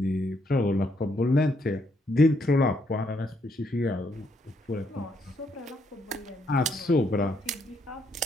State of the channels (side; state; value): both; normal; correlation 0.74